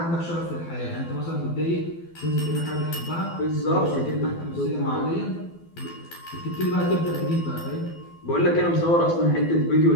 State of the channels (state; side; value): late; right; 12 ms